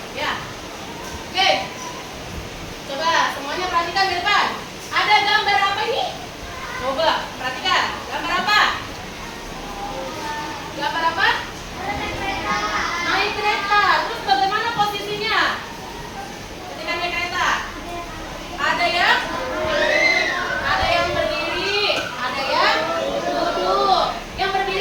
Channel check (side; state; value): both; identical; correlation 1.00